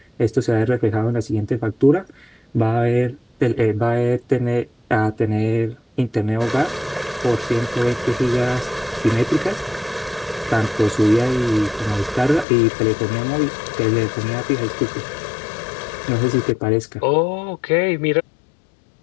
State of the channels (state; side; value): drops out; right; at 12.5 s